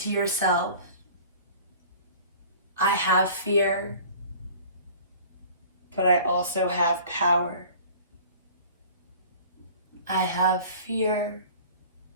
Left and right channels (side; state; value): both; inverted; correlation -0.45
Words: yourself, I have fear, but I also have power. I have fear,